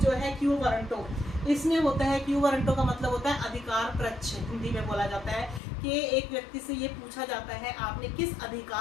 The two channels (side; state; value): right; drops out; at 5.6 s